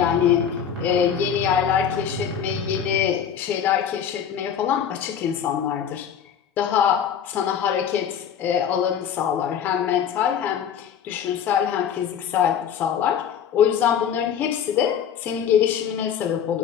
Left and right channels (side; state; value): right; quieter; 8.4 dB